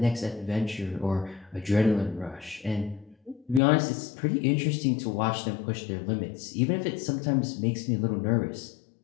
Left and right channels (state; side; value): drops out; right; at 3.6 s